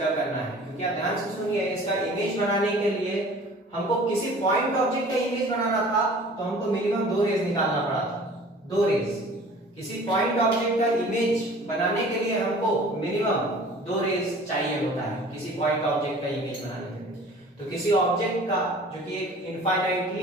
करना है, क्योंकि आप ध्यान से सुनिए, इसका इमेज बनाने के लिए हमको किसी पॉइंट ऑब्जेक्ट का इमेज बनाना था तो हमको मिनिमम 2 रेज निकालना पड़ा था। 2 रेज, किसी पॉइंट ऑब्जेक्ट का इमेज बनाने के लिए हमको मिनिमम 2 रेज चाहिए होता है किसी पॉइंट ऑब्जेक्ट का इमेज बनाने के लिए। तो किसी ऑब्जेक्ट का जो कि एक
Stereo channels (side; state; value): both; normal; correlation 0.46